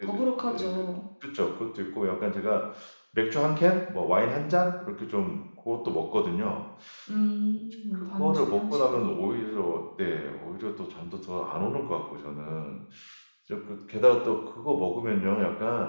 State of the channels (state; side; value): inverted; both; correlation -1.00